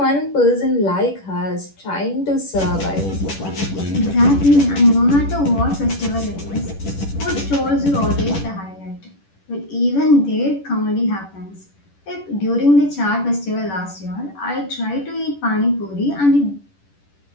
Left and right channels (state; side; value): late; right; 10 ms